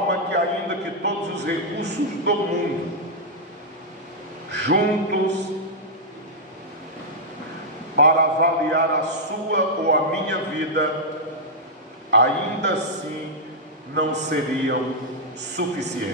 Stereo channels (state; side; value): normal; both; correlation -0.06